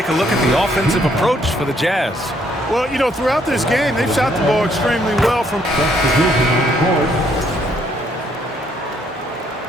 a look at the offensive approach for the Jazz. Well, you know, throughout this game, they've shot the ball extremely well from...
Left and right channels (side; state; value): both; normal; correlation 0.69